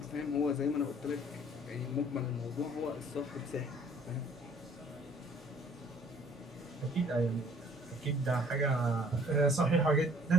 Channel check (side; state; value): both; normal; correlation 0.56